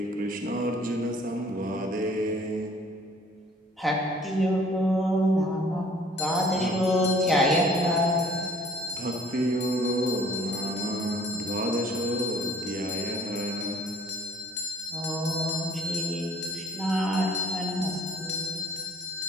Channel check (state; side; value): normal; both; correlation 0.55